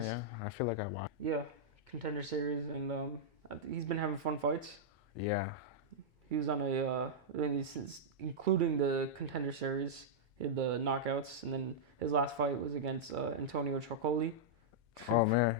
Yeah, I feel like I watched. Yeah, Contender series, and he's been having fun fights. Yeah. He was on including the Contender series, he had the knockouts, and then his last fight was against Antonio Trocoli. Oh man,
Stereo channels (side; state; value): both; normal; correlation -0.08